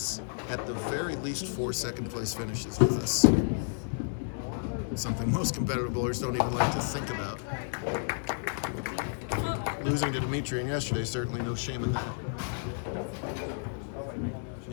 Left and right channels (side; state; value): right; silent; digital silence